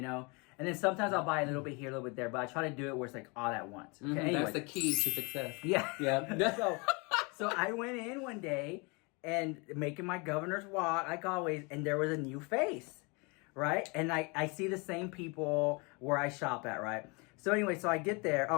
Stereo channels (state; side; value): quieter; right; 29.6 dB